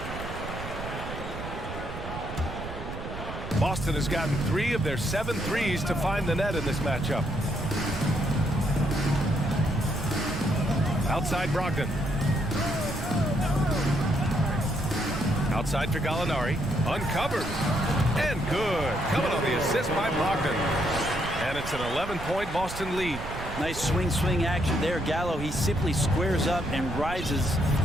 Boston has gotten 3 of their 7 threes to find the net in this matchup. Outside Brogdon. Outside for Gallinari. Uncovered. And good. Coming on the assist by Brogdon. And it's an 11-point Boston lead. Nice swing action there. Gallo, he simply squares up and rises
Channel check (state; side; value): noise; right; rumble, 9 dB below the sound